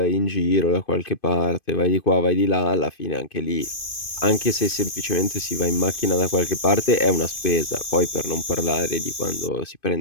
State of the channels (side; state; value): right; late; 2.5 ms